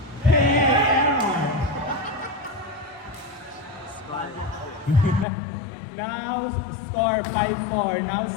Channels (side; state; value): right; drops out; at 5.2 s